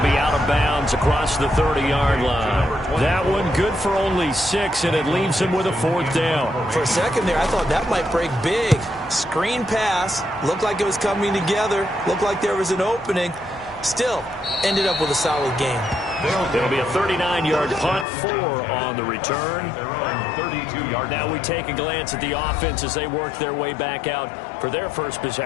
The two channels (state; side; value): drops out; right; at 18.1 s